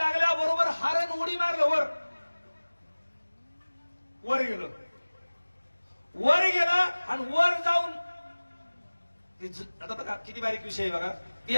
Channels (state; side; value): inverted; both; correlation -1.00